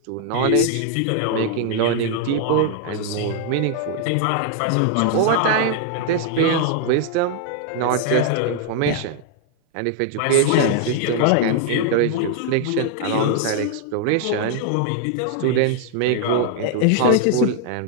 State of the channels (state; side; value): different; both; correlation 0.00